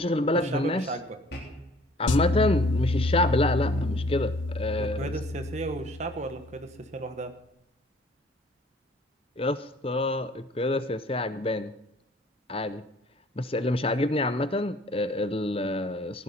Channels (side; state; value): both; normal; correlation 0.55